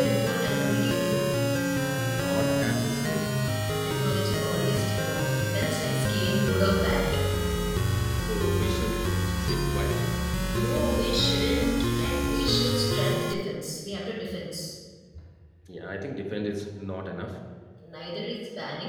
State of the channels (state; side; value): identical; both; correlation 1.00